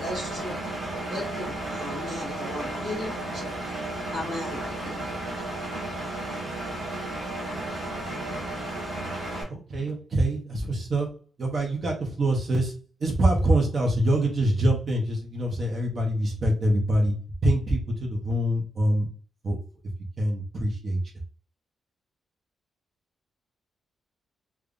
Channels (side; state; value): both; normal; correlation 0.84